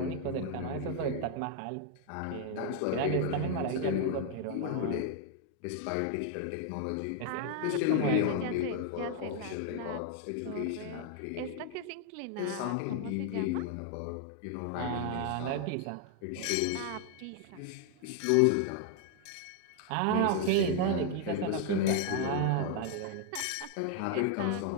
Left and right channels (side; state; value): both; different; correlation 0.00